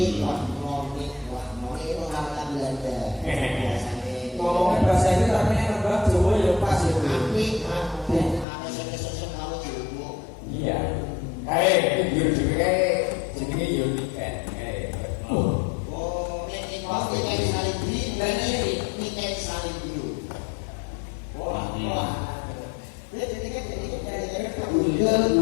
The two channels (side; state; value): right; drops out; at 8.5 s